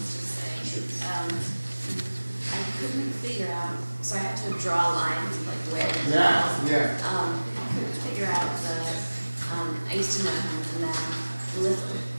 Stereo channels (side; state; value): both; inverted; correlation -1.00